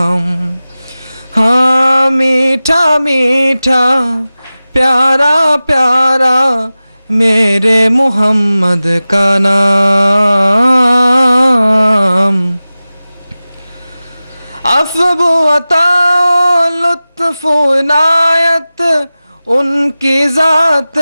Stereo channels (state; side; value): inverted; both; correlation -0.96